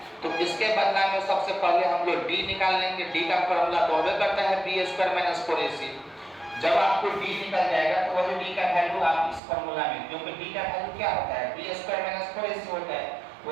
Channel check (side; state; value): left; drops out; at 9.4 s